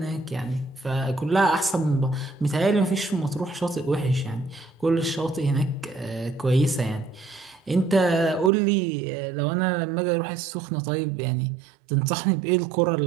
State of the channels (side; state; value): left; drops out; at 8.5 s